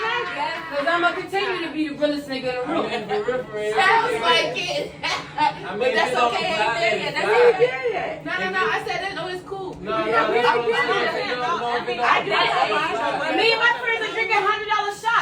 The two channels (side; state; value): both; identical; correlation 1.00